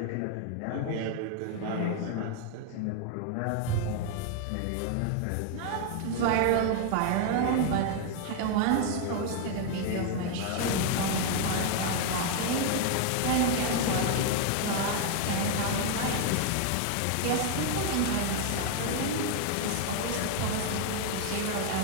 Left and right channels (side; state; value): both; different; correlation 0.00